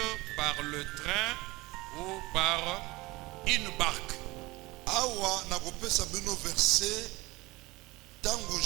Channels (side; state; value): left; quieter; 21.7 dB